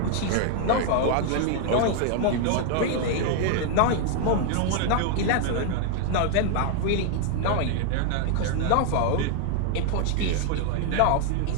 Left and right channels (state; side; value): different; both; correlation 0.00